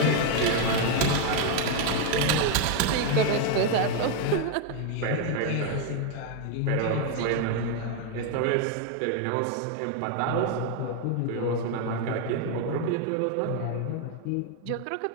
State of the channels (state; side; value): different; both; correlation 0.01